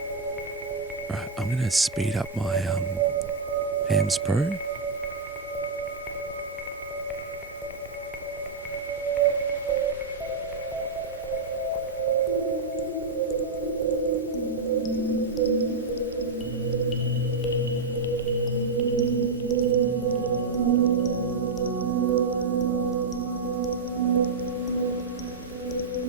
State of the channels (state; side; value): quieter; left; 3.9 dB